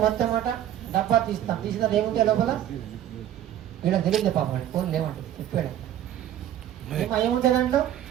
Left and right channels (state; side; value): quieter; left; 11.5 dB